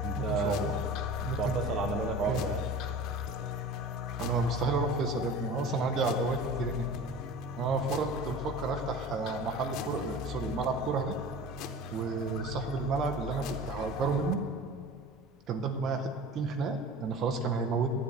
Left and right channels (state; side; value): normal; both; correlation 0.37